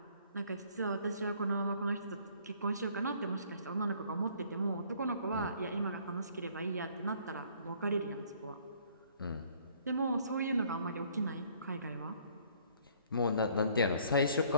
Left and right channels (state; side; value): inverted; both; correlation -0.59